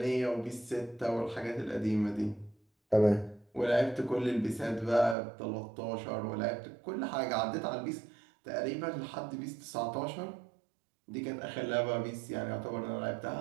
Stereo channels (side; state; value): left; drops out; at 5.2 s